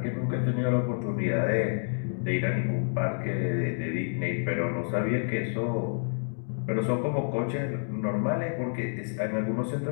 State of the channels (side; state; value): right; silent; digital silence